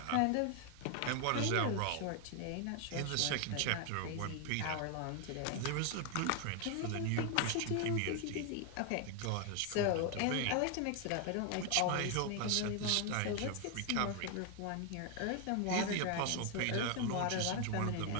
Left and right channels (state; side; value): different; both; correlation 0.00